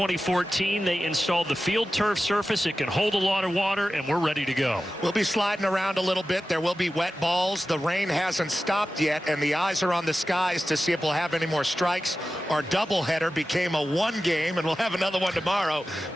they installed the field turf surface. It can hold a lot of water, and we're ready to go. We'll be sliding around a little bit. There will be wet balls. The rain hasn't stopped yet, and the eyes are on the skies to see if we'll have any more strikes. Our doubleheader became a one game, and we'll have another one tomorrow.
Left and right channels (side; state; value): both; normal; correlation 0.94